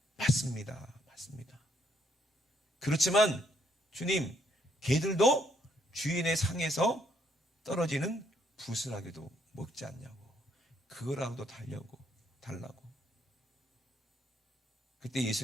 맞습니다. 맞습니다. 그렇지만 주님, 개들도 주인의 상에서 떨어지는 부스라기도 먹지 않냐고. 그거라도 달라고. 그때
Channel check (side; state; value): both; normal; correlation 0.71